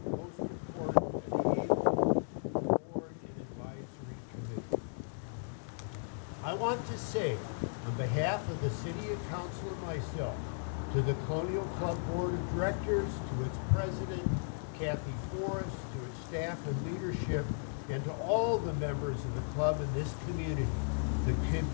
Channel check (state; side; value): silent; right; digital silence